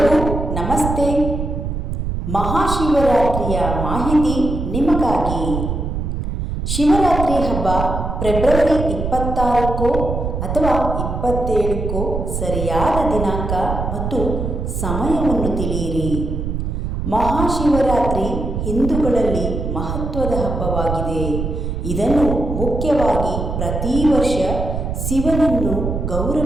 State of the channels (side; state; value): right; noise; rumble, 3 dB below the sound